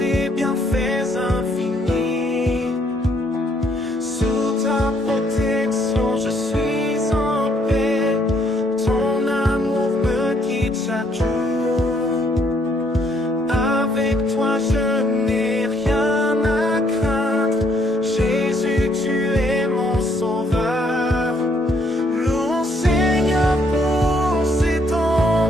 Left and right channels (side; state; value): both; normal; correlation 0.69